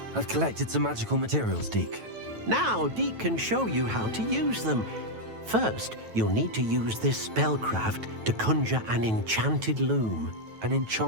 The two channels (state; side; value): late; left; 9.1 ms